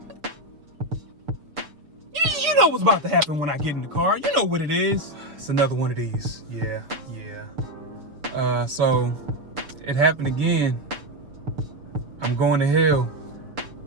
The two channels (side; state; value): left; late; 6.7 ms